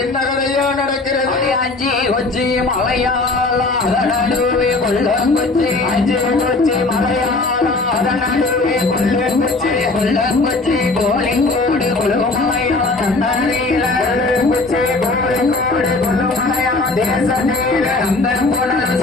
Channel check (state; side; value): quieter; right; 3.4 dB